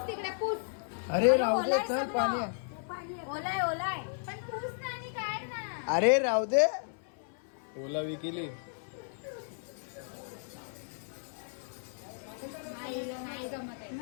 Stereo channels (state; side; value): silent; right; 55 dB below the other